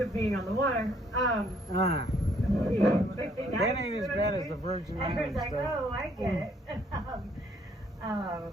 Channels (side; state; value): both; normal; correlation 0.66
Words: being on the water. That ain't as bad as the Virgin Islands. I was like, oh, I get it.